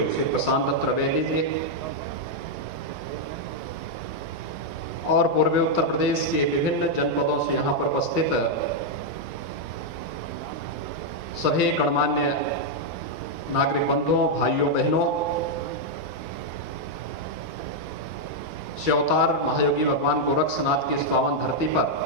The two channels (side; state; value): both; normal; correlation -0.02